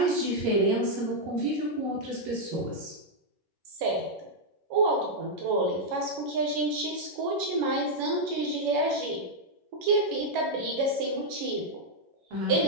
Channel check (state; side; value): late; left; 11 ms